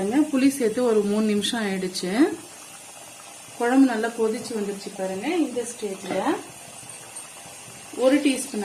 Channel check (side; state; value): both; identical; correlation 1.00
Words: புளி சேர்த்து ஒரு 3 நிமிஷம் ஆயிடுச்சு. குழம்பு நல்லா கொதிச்சு வந்துருச்சு பாருங்க. இந்த ஸ்டேஜ்ல 1